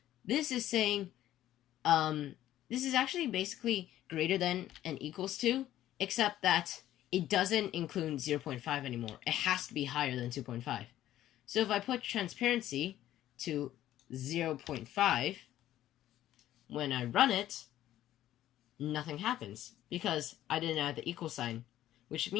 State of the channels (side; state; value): right; quieter; 13.1 dB